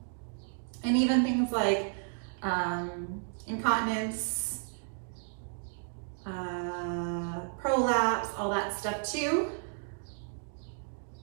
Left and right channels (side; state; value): left; silent; digital silence